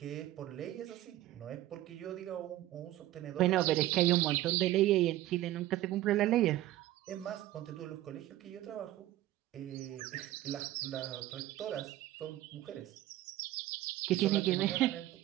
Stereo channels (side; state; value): left; quieter; 15.0 dB